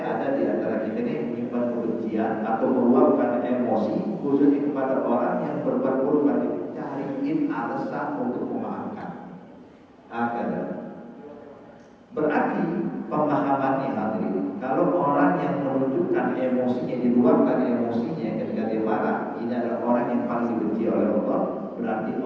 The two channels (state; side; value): identical; both; correlation 1.00